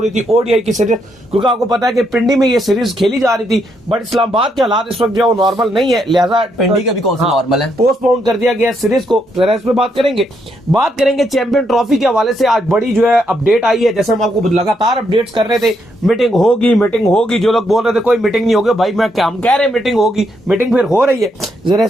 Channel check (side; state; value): both; normal; correlation 0.77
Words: थी ओडीआई की सीरीज, क्योंकि आपको पता है कि पिंडी में ये सीरीज खेली जा रही थी, बट इस्लामाबाद के हालात इस वक्त जो है वो नॉर्मल नहीं है, लिहाजा पिंडी का भी कौन सा नॉर्मल है, पोस्टपोन कर दिया गया सीरीज को। जरा इस पे बात करेंगे चैंपियन ट्रॉफी के हवाले से आज बड़ी जो है अपडेट आई है। जैसे हम आपको लगातार अपडेट्स कर रहे थे, मीटिंग होगी। जो लोग बोल रहे थे कोई मीटिंग नहीं होगी, भाई हम कह रहे हैं मीटिंग होगी, मीटिंग फिर हो रही है। जरा